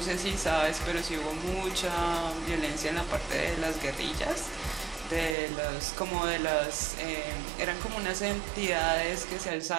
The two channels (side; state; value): left; drops out; at 5.4 s